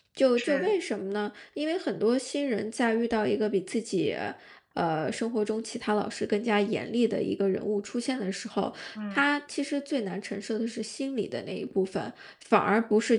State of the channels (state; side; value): identical; both; correlation 1.00